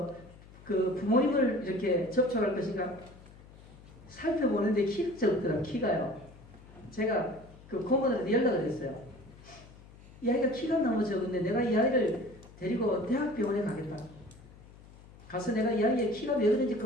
그 부모님을 이렇게 접촉할 것인가 살펴보는데 키가 적더라고요. 키가요. 제가 그 고모들한테 연락을 했어요. 이 아이가 키가 너무 적은데 내가 이 아이를 데리고 대학병원에 가겠다. 가서 내가 이 아이의 키가 몇 인지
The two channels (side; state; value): left; noise; hum, 21 dB below the sound